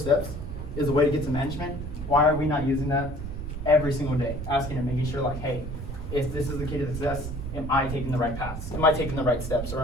is the way to get to management, why are we not using that every single day? Asking and making sure like, hey, if this is the key to success, am I taking the right paths? Am I taking the right steps, or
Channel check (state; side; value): noise; right; rumble, 7 dB below the sound